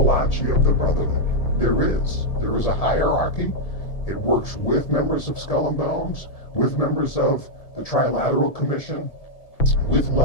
of the Brotherhood. There is. There is a hierarchy. It works with members of Skull and Bones, with members of the Trilateral Commission, with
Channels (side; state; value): right; late; 1.7 ms